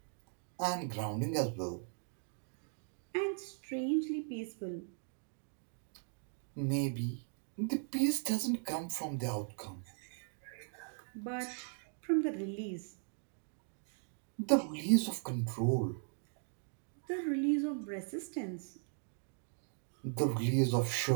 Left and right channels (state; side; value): silent; left; 52 dB below the other